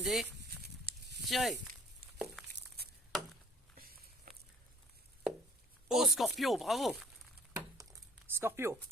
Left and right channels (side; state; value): both; normal; correlation 0.56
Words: Tirez. Oh, Scorpio, bravo. Scorpio.